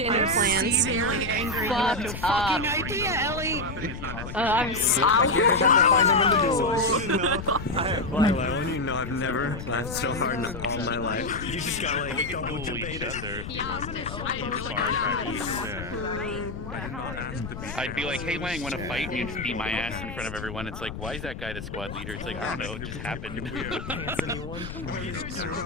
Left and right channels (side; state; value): left; noise; rumble, 9 dB below the sound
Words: plans. Fucked up. idea, Ellie. I'm Lila, you know I've never laughed so hard in all my life. You just got like double debated. I'd be like, hey Lang, wanna fight? And you'd just beat my ass in front of everyone. It's like, why is that guy the squad leader? It's like, I don't know, it just happened.